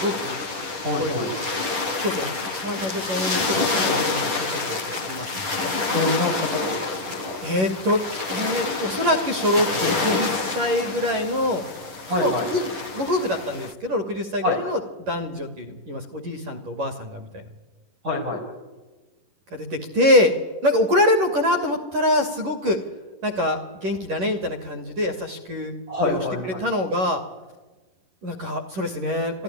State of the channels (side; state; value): left; late; 10 ms